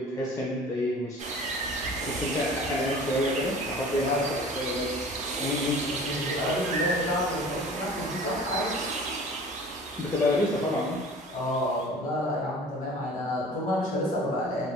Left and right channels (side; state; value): both; normal; correlation 0.44